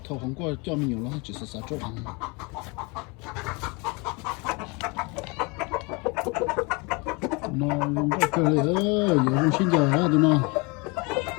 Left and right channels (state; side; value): quieter; right; 28.8 dB